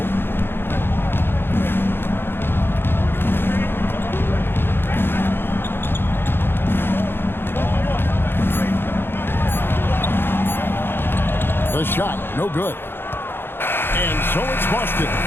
The shot, no good. And so it's Boston,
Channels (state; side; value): late; right; 0.10 ms